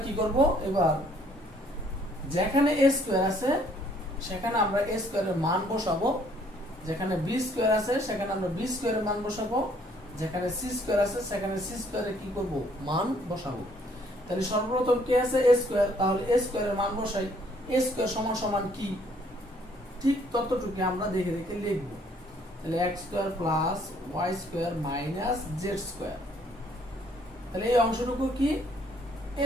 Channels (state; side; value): normal; both; correlation 0.64